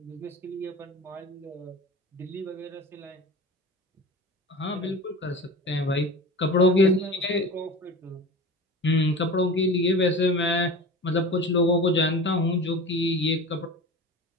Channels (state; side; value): normal; both; correlation 0.33